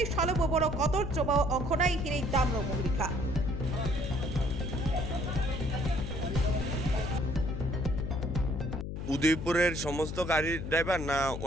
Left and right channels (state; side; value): noise; left; hum, 6 dB below the sound